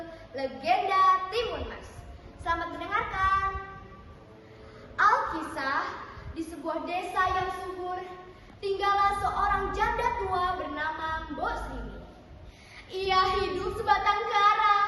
Legenda Timun Mas. Selamat mendengarkan. Alkisah, di sebuah desa yang subur, tinggallah seorang janda tua bernama Mbok Srini. Ia hidup sebatang kara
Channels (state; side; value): identical; both; correlation 1.00